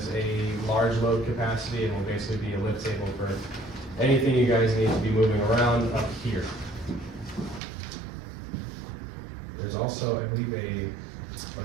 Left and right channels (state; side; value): drops out; left; at 7.6 s